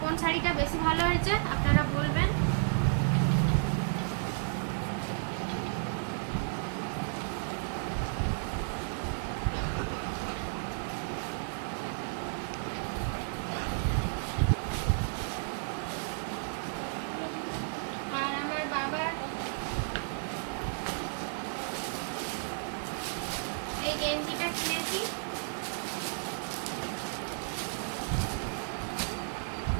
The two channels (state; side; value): silent; left; digital silence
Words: কোন শাড়িটা বেশি ভালো হয়েছে আপনারা বলবেন। আর আমার বাবার এই গেঞ্জিটা কিনেছি,